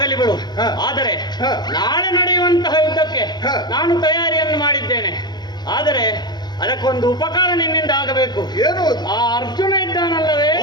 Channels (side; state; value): right; late; 0.21 ms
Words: ಬಿಡು. ಆದರೆ ನಾಳೆ ನಡೆಯುವಂತಹ ಯುದ್ಧಕ್ಕೆ ನಾನು ತಯಾರಿಯನ್ನು ಮಾಡಿದ್ದೇನೆ. ಆದರೆ ಅದಕ್ಕೊಂದು ಉಪಕಾರ ನಿನ್ನಿಂದ ಆಗಬೇಕು. ಏನು? ಆ ಅರ್ಜುನ ಇದ್ದಾನಲ್ಲವೇ,